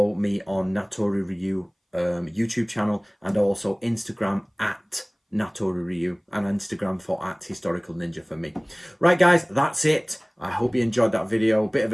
me on Natori Ryu YouTube channel, and also Instagram at Natori Ryu, and Instagram for @Historical Ninja for me. Right, guys, that's it. I hope you enjoyed that video. Bit of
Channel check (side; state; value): both; identical; correlation 1.00